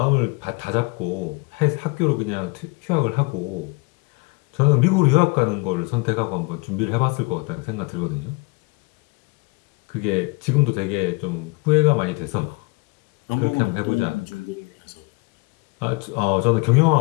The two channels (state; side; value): quieter; right; 28.1 dB